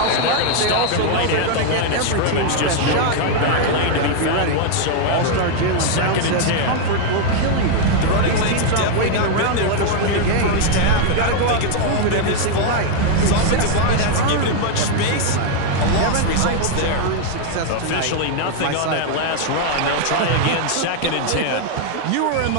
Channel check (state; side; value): different; both; correlation 0.00